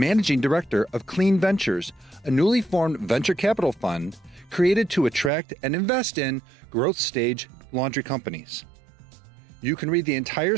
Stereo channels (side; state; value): left; drops out; at 5.3 s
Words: Director of Clean Ventures, a newly formed venture capital fund created to attract and invest in growth stage laundry companies. You can read the entire